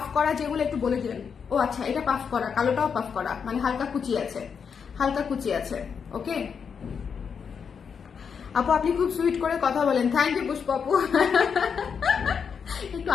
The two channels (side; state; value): right; quieter; 6.5 dB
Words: করা যেগুলো একটু বলে দিবেন। ও আচ্ছা, এটা পাফ করা, কালোটাও পাফ করা, মানে হালকা কুচি আছে, ওকে। আপু আপনি খুব সুইট করে কথা বলেন, থ্যাংক ইউ পুষ্প আপু। একটু